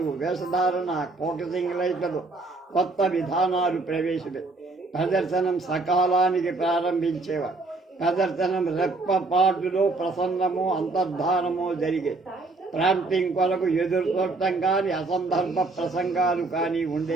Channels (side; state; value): left; quieter; 3.4 dB